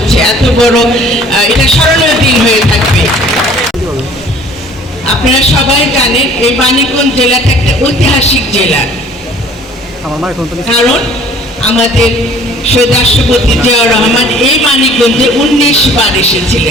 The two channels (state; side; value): normal; both; correlation 0.52